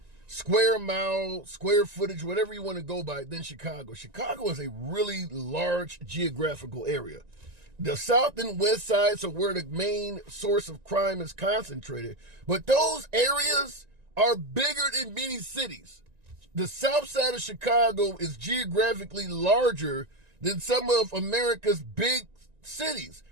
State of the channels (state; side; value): late; left; 1.9 ms